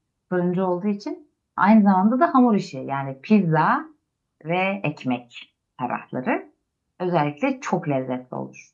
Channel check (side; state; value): both; identical; correlation 1.00